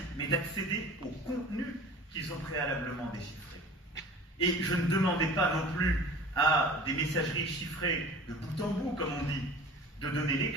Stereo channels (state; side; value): normal; both; correlation 0.41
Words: mais d'accéder au contenu qu'ils ont préalablement déchiffré. Et je ne demandais pas non plus à des messageries chiffrées de bout en bout, comme on dit, de donner les